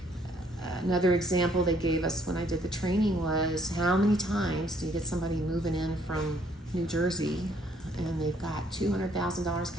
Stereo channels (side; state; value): both; normal; correlation 0.65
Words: Another example they gave us when I did the training was, how many times do you get somebody moving in from New Jersey and they've got $200,000